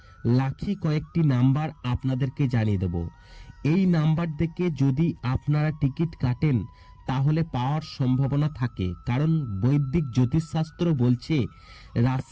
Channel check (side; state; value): both; identical; correlation 1.00